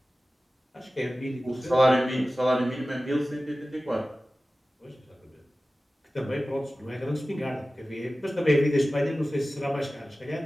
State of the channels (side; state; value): both; normal; correlation 0.96